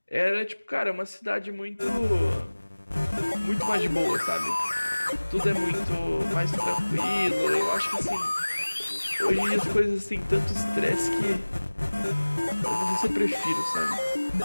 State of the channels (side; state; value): both; inverted; correlation -1.00